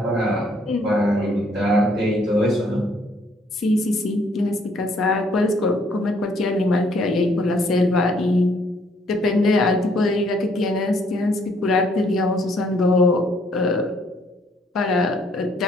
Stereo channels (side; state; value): both; normal; correlation 0.66